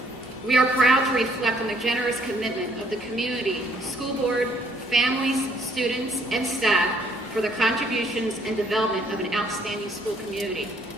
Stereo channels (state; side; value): normal; both; correlation 0.65